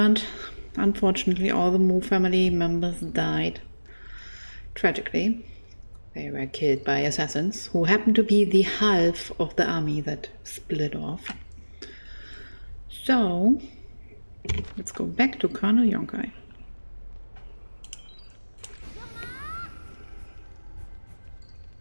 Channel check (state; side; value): inverted; both; correlation -1.00